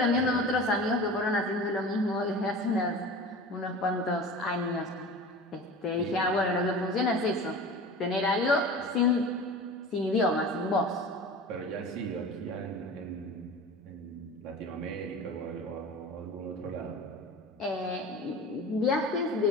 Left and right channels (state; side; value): normal; both; correlation 0.35